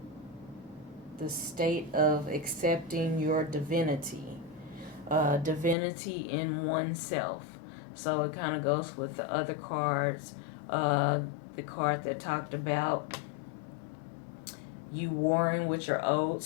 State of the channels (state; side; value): drops out; right; at 5.8 s